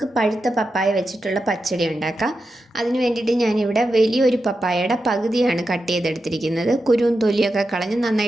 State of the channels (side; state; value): both; normal; correlation 0.89